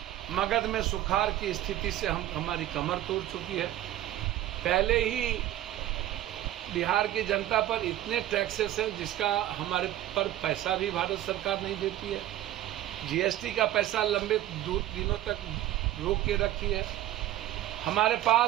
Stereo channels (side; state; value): left; quieter; 13.7 dB